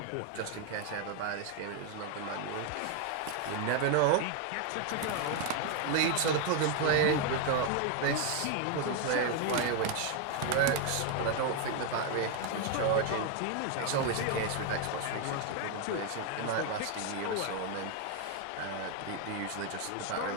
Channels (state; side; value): different; both; correlation 0.01